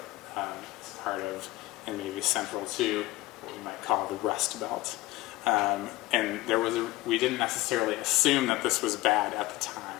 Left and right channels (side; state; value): right; quieter; 18.2 dB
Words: It's part of, and maybe central to, what we might call the Rust Belt. And we didn't necessarily assume that this was bad at the time.